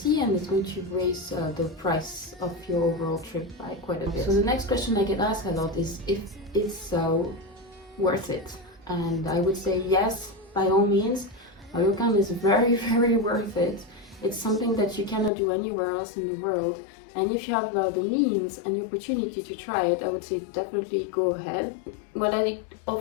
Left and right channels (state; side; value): drops out; right; at 15.3 s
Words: and it's going to raise the price of your overall trip by quite a bit. So the next question I get asked a lot is if it's worth it. And I would say yes, by all means. A ryokan is very, very worth it. It's something that you cannot do anywhere else in the world. And if you have the means and the opportunity to try it, I would say definitely go ahead. What I